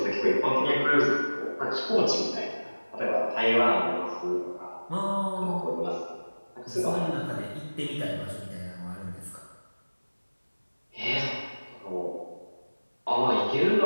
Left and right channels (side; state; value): both; inverted; correlation -1.00